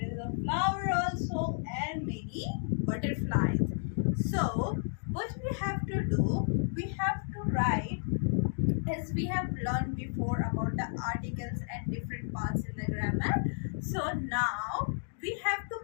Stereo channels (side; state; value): right; silent; digital silence